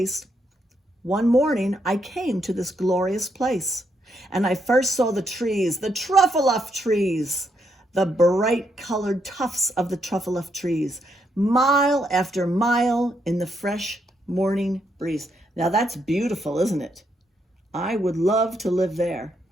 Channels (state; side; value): normal; both; correlation 0.77